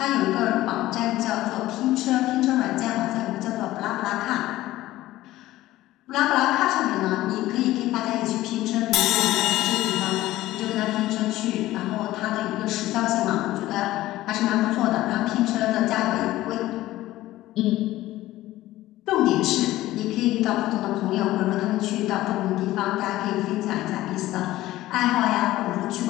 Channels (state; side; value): quieter; right; 16.0 dB